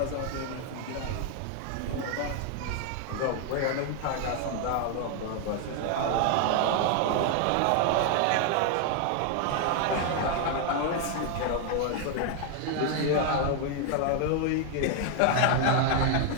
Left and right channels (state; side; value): different; both; correlation 0.00